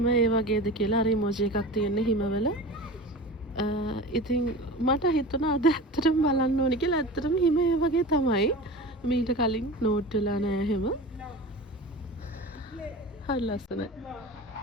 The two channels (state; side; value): normal; both; correlation 0.33